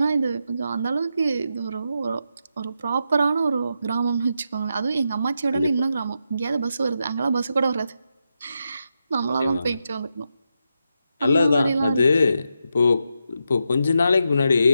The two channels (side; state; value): both; inverted; correlation -0.85